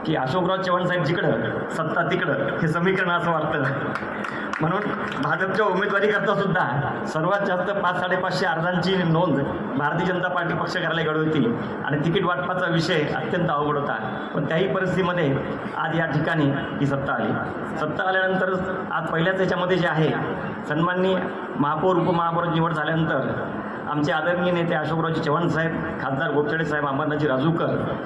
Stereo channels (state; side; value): identical; both; correlation 1.00